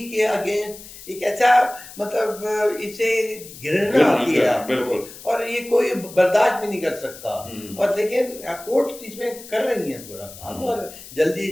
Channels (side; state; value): left; noise; hiss, 16 dB below the sound